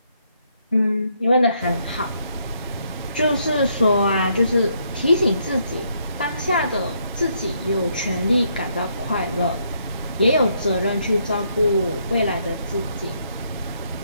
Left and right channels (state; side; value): inverted; both; correlation -0.73